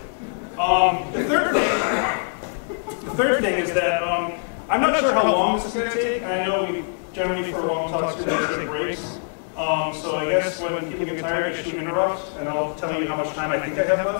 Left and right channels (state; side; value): silent; right; digital silence